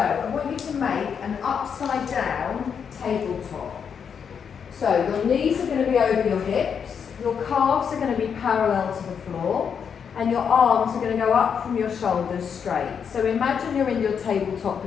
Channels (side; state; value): right; quieter; 7.0 dB